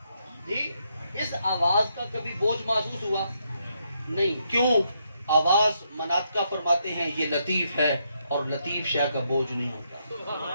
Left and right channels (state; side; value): inverted; both; correlation -0.77